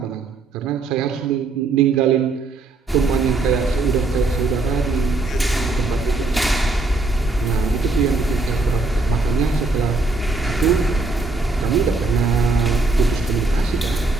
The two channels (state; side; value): quieter; left; 3.4 dB